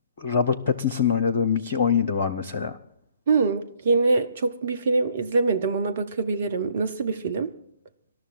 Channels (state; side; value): inverted; both; correlation -0.62